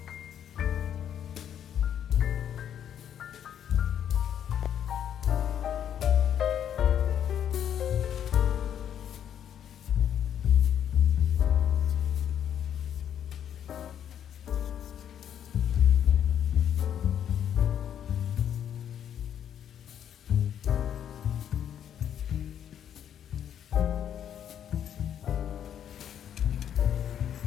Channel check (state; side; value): quieter; right; 9.5 dB